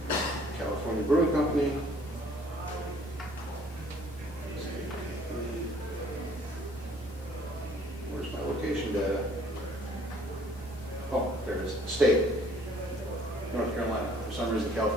California Brewing Company, where's my location data? Oh, there it is. State. North Carolina. For some reason,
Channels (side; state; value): both; normal; correlation 0.58